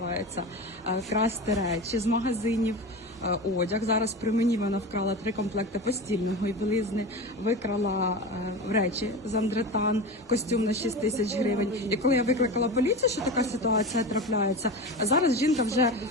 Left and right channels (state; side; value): normal; both; correlation 0.27